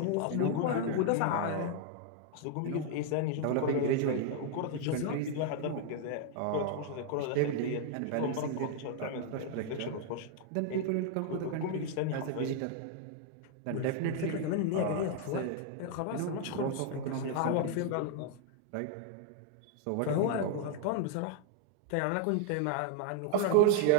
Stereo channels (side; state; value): both; different; correlation 0.00